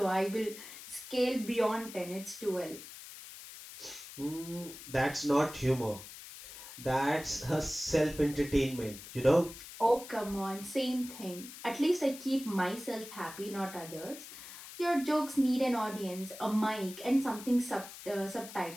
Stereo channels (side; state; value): left; noise; hiss, 14 dB below the sound